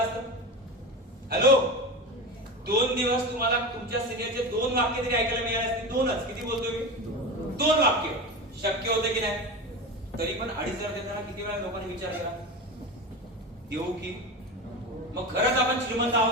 असतं. हॅलो, 2 दिवस तुम्हाला तुमच्या सिनियरचे 2 वाक्य तरी ऐकायला मिळाले असते. 2च, किती बोलतो मी? 2 वाक्य शक्य होते की नाही? तरी पण 2,500 देताना किती वेळा लोकांनी विचार केला, देऊ की? मग खरंच आपण श्रीमंत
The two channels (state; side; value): normal; both; correlation 0.24